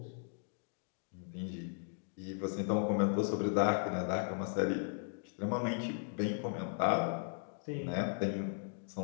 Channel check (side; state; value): right; silent; digital silence